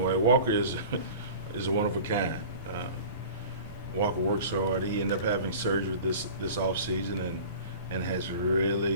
way. Walker is is a one of a kind. Walker works hard. He ended up having surgery this off season and has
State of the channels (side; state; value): both; inverted; correlation -0.40